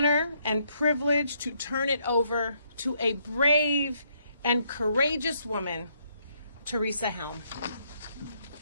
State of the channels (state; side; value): inverted; both; correlation -0.72